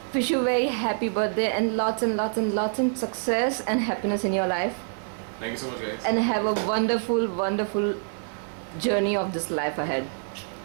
Wish you a very happy birthday and lots and success and happiness in your life. Thank you so much, guys. And have a wonderful, wonderful journey of this life ahead.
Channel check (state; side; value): silent; left; 57 dB below the other